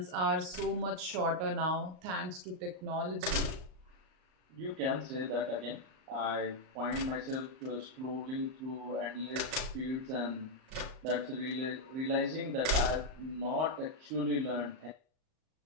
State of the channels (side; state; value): left; late; 38 ms